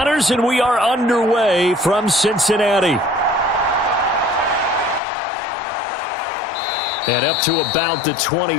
and we are underway from Cincinnati. And up to about the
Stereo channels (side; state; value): right; drops out; at 5.0 s